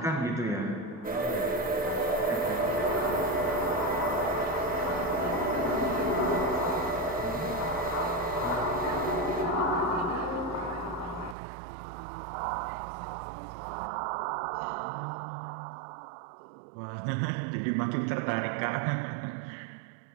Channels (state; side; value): drops out; left; at 11.4 s